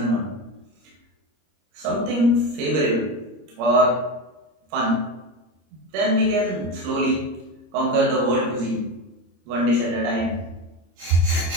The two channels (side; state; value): left; late; 26 ms